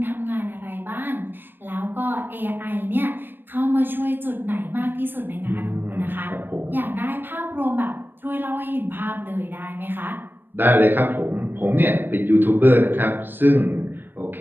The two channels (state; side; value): late; left; 0.095 ms